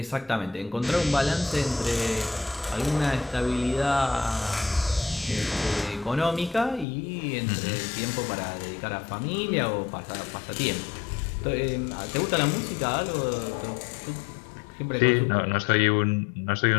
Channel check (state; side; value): drops out; right; at 6.9 s